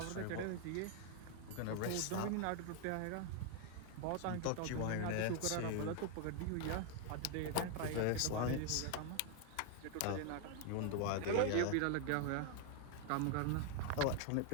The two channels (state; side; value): different; both; correlation 0.00